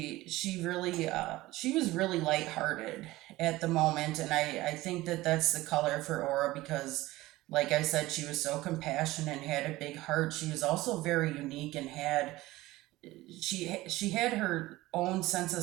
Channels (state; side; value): quieter; left; 18.2 dB